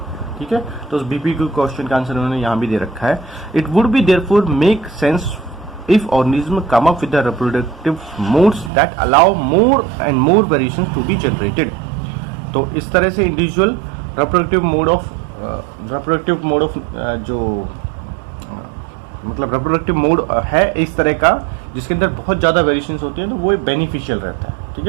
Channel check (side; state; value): left; drops out; at 8.7 s